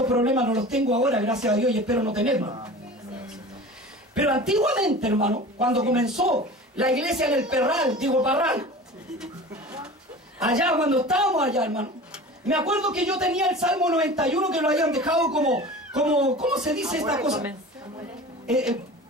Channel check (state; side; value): normal; both; correlation 0.37